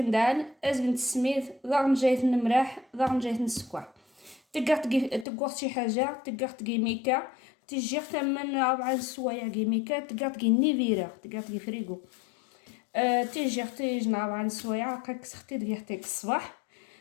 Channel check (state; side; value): drops out; right; at 5.2 s